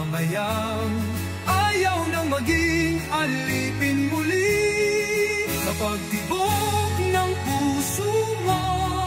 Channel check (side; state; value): both; identical; correlation 1.00